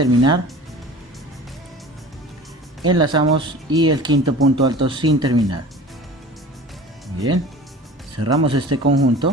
enlazamos y el quinto punto alto sin terminar. Bien, cerramos este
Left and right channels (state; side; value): normal; both; correlation 0.40